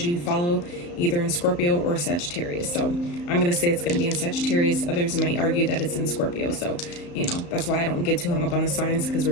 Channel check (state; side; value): late; right; 34 ms